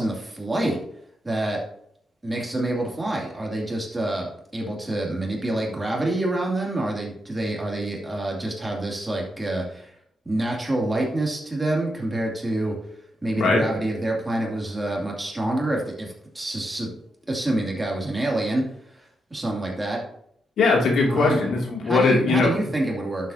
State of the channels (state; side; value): normal; both; correlation 0.82